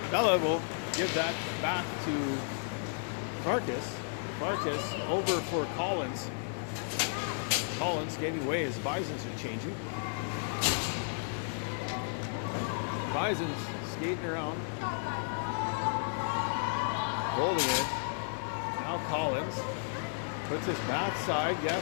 Bella will give that back to Farkas. Farkas over for Collins. Collins skating away as Bisons are changing. Bisons skating around. Holding it. Now Collins puts his backside.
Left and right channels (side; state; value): right; silent; 56 dB below the other